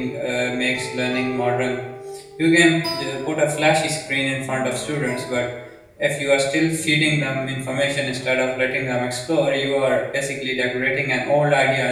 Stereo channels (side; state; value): both; identical; correlation 1.00